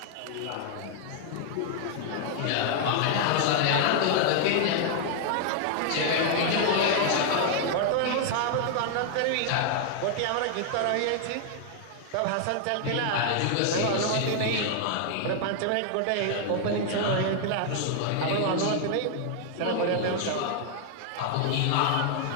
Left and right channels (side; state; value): both; different; correlation 0.00